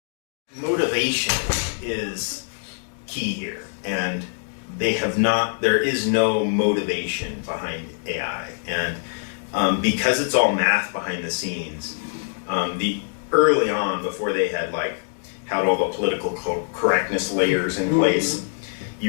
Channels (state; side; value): silent; right; digital silence